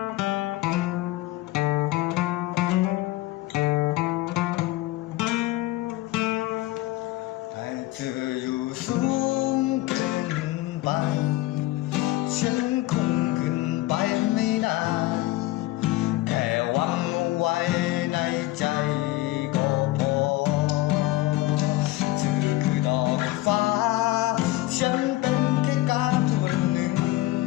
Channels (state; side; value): quieter; right; 17.5 dB